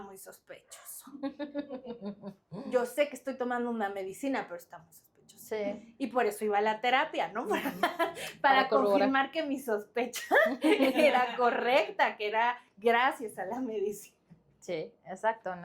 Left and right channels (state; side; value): identical; both; correlation 1.00